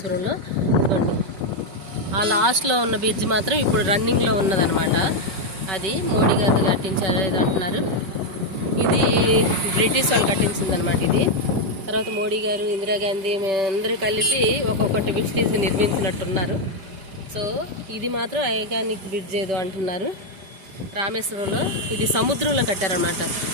ఇదిగోండి ఆ లాస్ట్లో ఉన్న బ్రిడ్జ్ మాత్రం ఇప్పుడు రన్నింగ్లో ఉన్నదనమాట. అది మోడీ గారు కట్టించారు ఇది అంటున్నారు. ఇది బ్రిటిష్ వాళ్ళు కట్టించింది అనమాట. ఇది తర్వాత మోడీ గారు, ఇందిరాగాంధీ అందరూ కలిపి ఒక్కొక్కటి బ్రిడ్జ్ నిర్మించినట్టున్నారు. సో ఇది మాత్రం ఐకానిక్ బ్రిడ్జ్ ఏదో అంటున్నారు రామేశ్వరంలో. ఇది సముద్రంలో కట్టారనమాట.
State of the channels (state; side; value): late; left; 5.2 ms